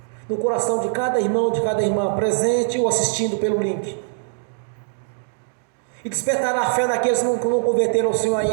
no coração de cada irmão, de cada irmã, presente ou assistindo pelo link, e despertar a fé daqueles que não converteram ao Senhor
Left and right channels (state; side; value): silent; left; digital silence